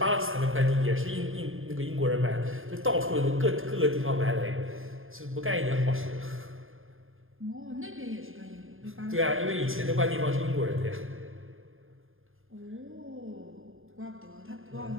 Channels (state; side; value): late; left; 0.60 ms